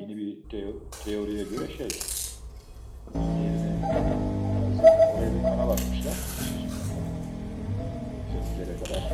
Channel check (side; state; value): both; identical; correlation 1.00